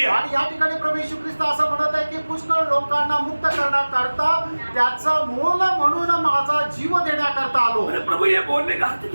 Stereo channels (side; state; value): both; inverted; correlation -1.00